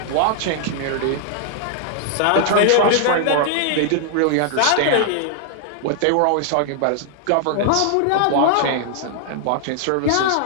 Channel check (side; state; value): both; different; correlation -0.01